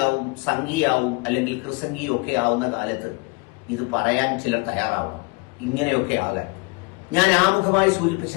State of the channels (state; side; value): quieter; right; 27.5 dB